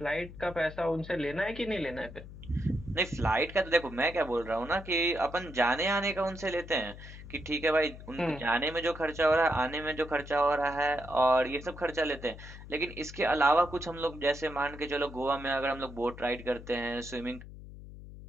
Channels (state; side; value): noise; left; hum, 14 dB below the sound